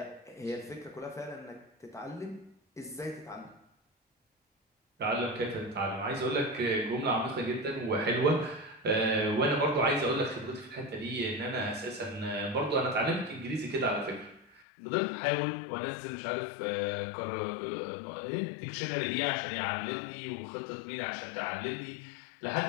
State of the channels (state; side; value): drops out; right; at 14.6 s